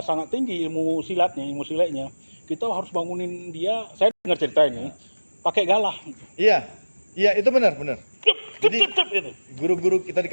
sangat tinggi ilmu silatnya, kita harus bangunin dia. Saya dengar cerita ini pakai galah. Iya. Iya, itu benar. Jadi Gitu. guru-guru kita di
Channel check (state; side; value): inverted; both; correlation -1.00